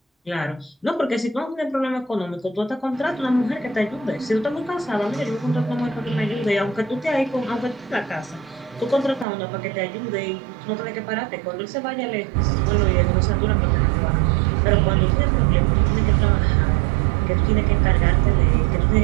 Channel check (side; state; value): left; drops out; at 9.2 s